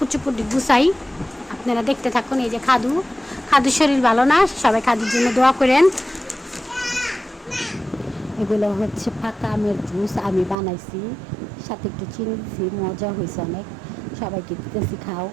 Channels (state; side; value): drops out; left; at 10.6 s